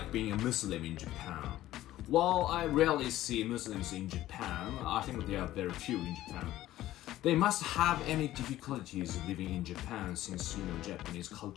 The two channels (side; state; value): right; quieter; 14.6 dB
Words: being a Muslim in Japan? While I rarely see Muslims in Japan, I think there are very few in Japan. They must have any difficulties living in Japan since, Japanese